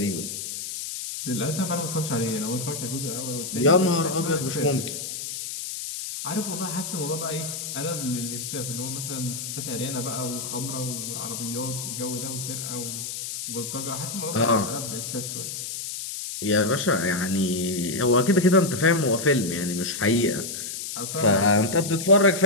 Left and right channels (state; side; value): noise; left; hiss, 6 dB below the sound